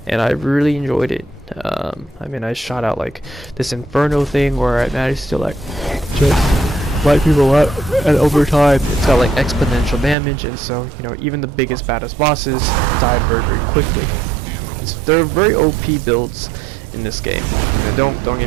and I really enjoyed it. I mean, I shot out like this inferno thing where I managed to like just light people up, and over time it's got like exponential damage, and so, you know, even the biggest baddest bosses die very, very quickly. So there are very OP builds in this game. You know, don't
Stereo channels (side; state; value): left; drops out; at 10.2 s